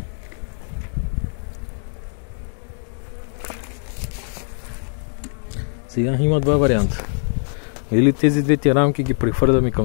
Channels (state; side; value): silent; right; 58 dB below the other